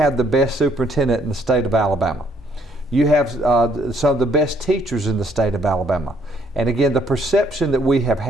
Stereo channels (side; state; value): both; normal; correlation 0.67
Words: the best superintendent in the state of Alabama. You have some of the best teachers in the state of Alabama. And again, the perception that we have